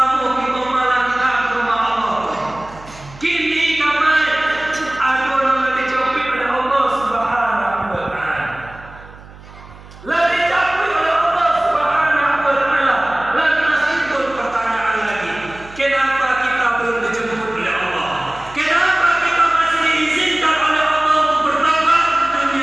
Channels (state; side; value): noise; right; hum, 20 dB below the sound